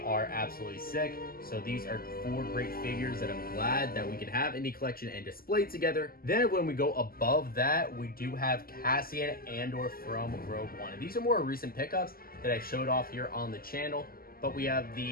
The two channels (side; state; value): right; late; 0.42 ms